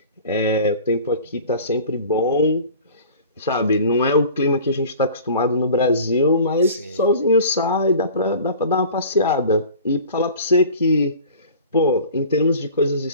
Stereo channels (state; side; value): inverted; both; correlation -0.43